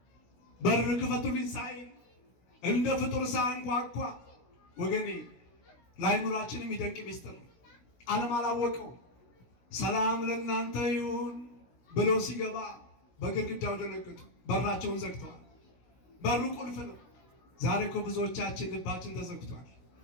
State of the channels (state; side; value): late; right; 16 ms